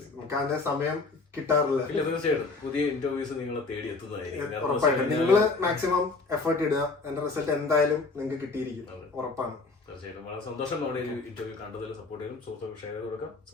നമുക്ക് അതിന്റെ സമയം കിട്ടാറില്ല. തീർച്ചയായിട്ടും പുതിയ ഇന്റർവ്യൂസ് നിങ്ങളെ തേടി എത്തുന്നതായിരിക്കും. ഉറപ്പായിട്ടും നിങ്ങള് മാക്സിമം എഫേർട്ട് ഇടുക. എന്റെ റിസൾട്ട് എന്തായാലും നിങ്ങൾക്ക് കിട്ടിയിരിക്കും, ഉറപ്പാണ്. തീർച്ചയായിട്ടും വളരെ സന്തോഷം. നമ്മുടെ ഒരു ഇന്റർവ്യൂ കണ്ടതിൽ സപ്പോർട്ട് ചെയ്യും. സുഹൃത്തുക്കൾ ഷെയർ ചെയ്ത് കൊടുക്കുക,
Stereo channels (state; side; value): quieter; right; 3.8 dB